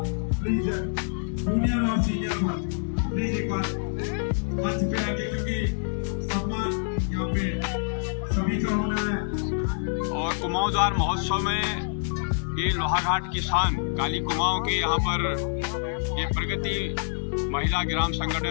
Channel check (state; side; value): silent; right; digital silence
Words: प्लीज जूनियर और सीनियर में प्लीज एक बार मंच पे आके, क्योंकि सम्मान यहाँ पे सभी का होना है। और कुमाऊं द्वार महोत्सव में ये लोहाघाट की शान काली कुमाऊं के यहाँ पर ये प्रगति महिला ग्राम